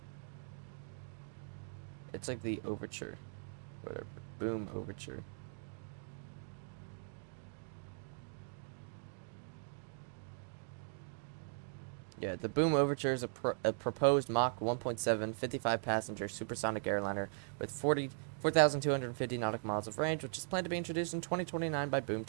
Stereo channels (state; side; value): silent; left; digital silence